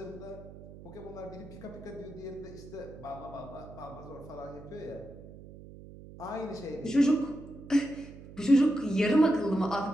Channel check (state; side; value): noise; right; hum, 16 dB below the sound